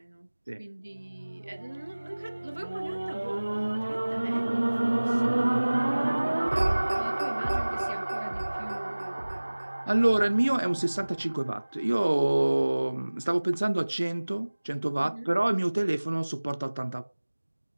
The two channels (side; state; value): both; inverted; correlation -1.00